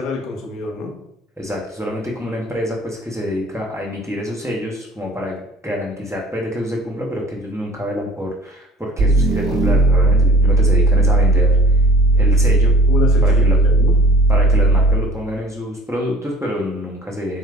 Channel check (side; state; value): both; normal; correlation 0.49